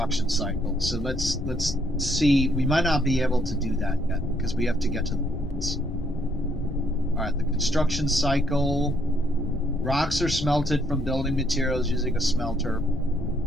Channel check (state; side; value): noise; left; rumble, 9 dB below the sound